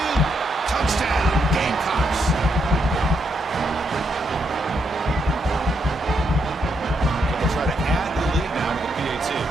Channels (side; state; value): both; normal; correlation 0.79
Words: Touchdown, Gamecocks. They'll try to add the lead now to the PAT.